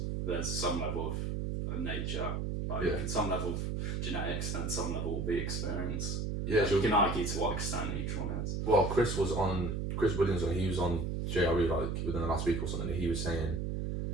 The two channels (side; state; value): right; noise; hum, 1 dB below the sound